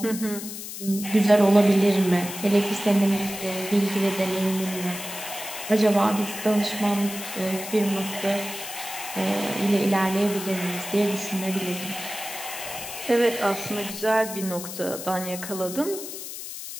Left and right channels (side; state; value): left; noise; hiss, 9 dB below the sound